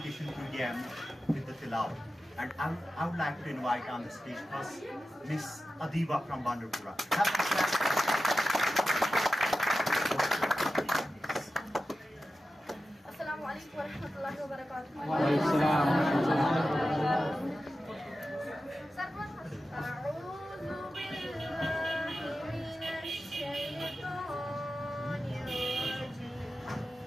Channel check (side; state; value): both; normal; correlation 0.93